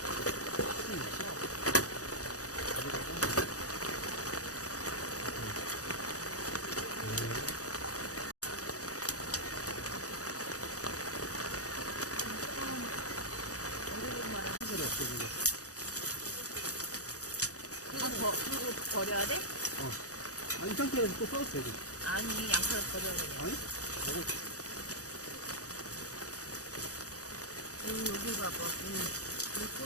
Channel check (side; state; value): right; late; 0.66 ms